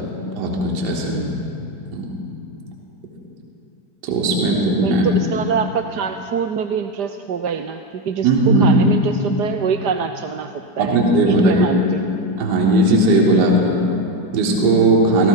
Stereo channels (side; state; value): left; late; 5.2 ms